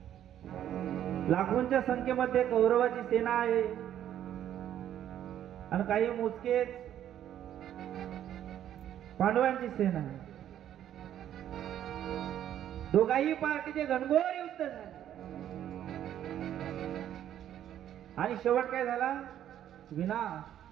लाखोंच्या संख्येमध्ये कौरवाची सेना आहे आणि काही मोजकेच पांडवांची सेना आहे. दोघाही पार्टीचे घनघोर युद्ध झाले आणि शेवट काय झाला? विनाश.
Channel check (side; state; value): left; quieter; 10.9 dB